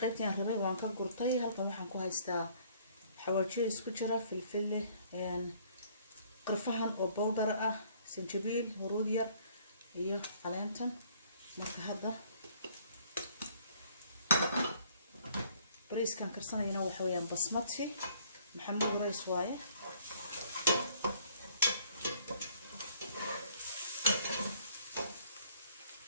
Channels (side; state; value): both; inverted; correlation -0.60